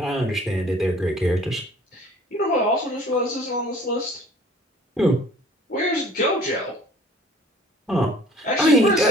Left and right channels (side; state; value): both; normal; correlation 0.50